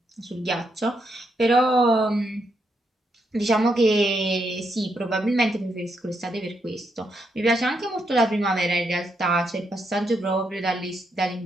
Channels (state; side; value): normal; both; correlation 0.79